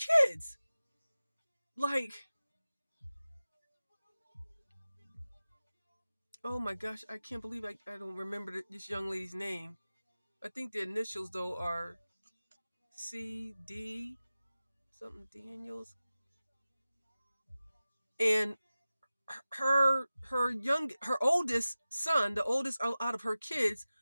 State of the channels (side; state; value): both; inverted; correlation -0.96